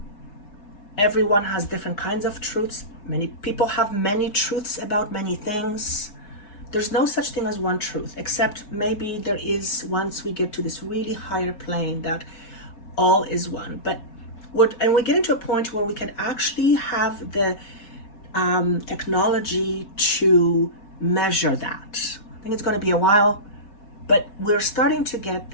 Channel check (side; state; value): right; late; 4.9 ms